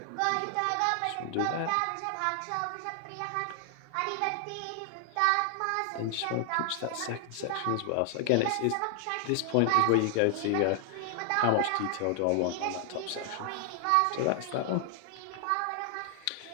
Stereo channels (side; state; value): both; different; correlation 0.00